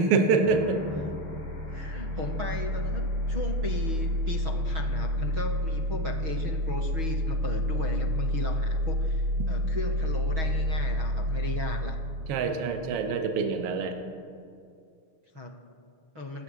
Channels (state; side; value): late; left; 6.3 ms